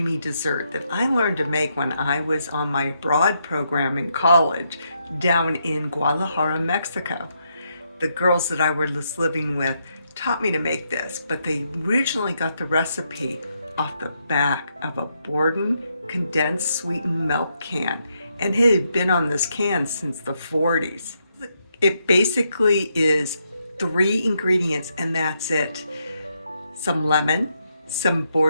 dessert that I learned to make when I was on my abroad program in college down in Guadalajara, Mexico. The girls that I was living with taught me to make this, but they originally got the recipe off the back of a Borden condensed sweetened milk can, and it had been on this can since the 40s. It basically is 3 ingredients and that's it. Some lemon, some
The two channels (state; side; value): inverted; both; correlation -0.79